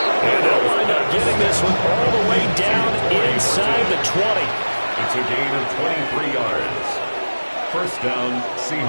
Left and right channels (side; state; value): both; inverted; correlation -1.00